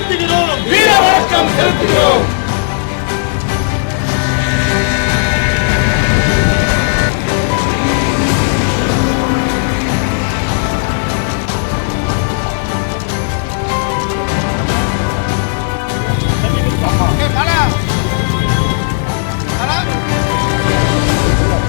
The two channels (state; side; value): silent; right; digital silence